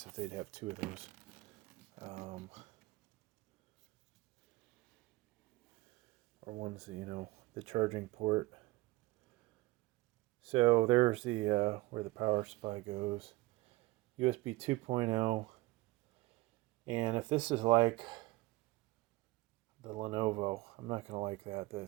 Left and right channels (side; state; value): left; quieter; 20.6 dB